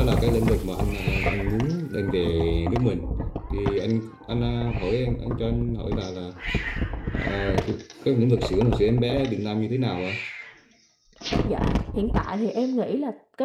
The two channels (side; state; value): both; identical; correlation 1.00